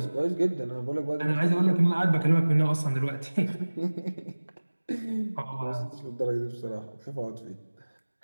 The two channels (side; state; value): both; inverted; correlation -1.00